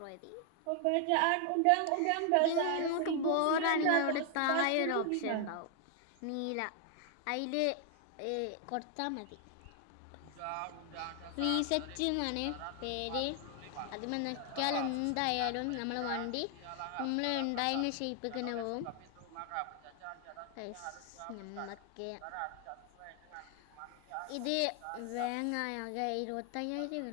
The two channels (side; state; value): both; different; correlation 0.00